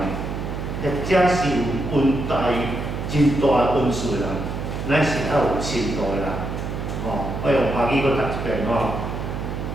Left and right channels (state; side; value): noise; right; hum, 5 dB below the sound